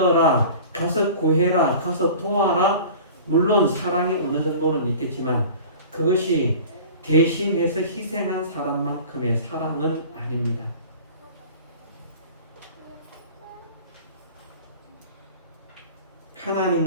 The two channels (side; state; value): both; inverted; correlation -0.40